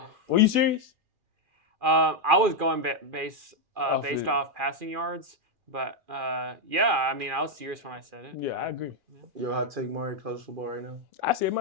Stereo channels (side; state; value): left; late; 2.4 ms